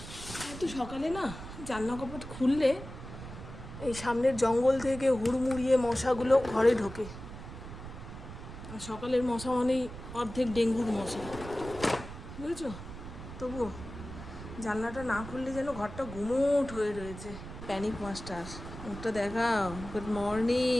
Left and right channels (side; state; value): right; noise; rumble, 12 dB below the sound